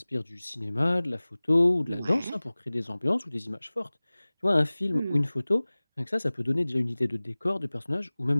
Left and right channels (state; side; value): inverted; both; correlation -0.99